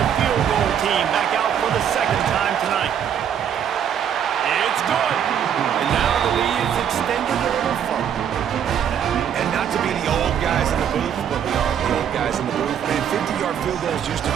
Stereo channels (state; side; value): quieter; left; 8.8 dB